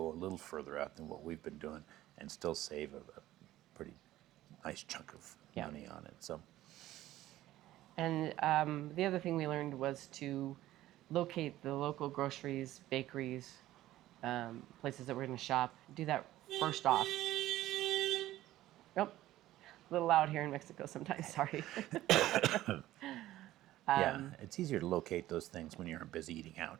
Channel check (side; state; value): left; quieter; 14.9 dB